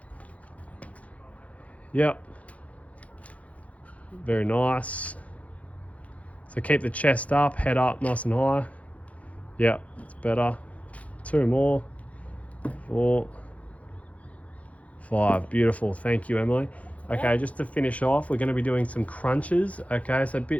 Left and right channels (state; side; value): late; right; 0.067 ms